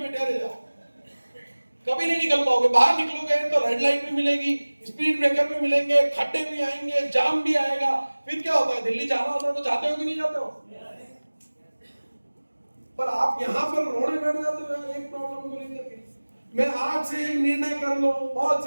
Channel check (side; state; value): both; inverted; correlation -1.00